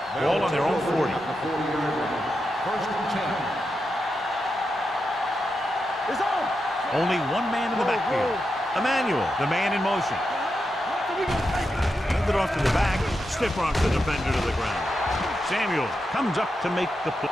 Ball on their own 40. At the 40-yard line. First and 10. It's on. Only one man in the backfield. Emmanuel, the man in motion. Hand it off to the back. Stiff rocks the defender to the ground. Samuel comes up to make the play.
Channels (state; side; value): normal; both; correlation 0.87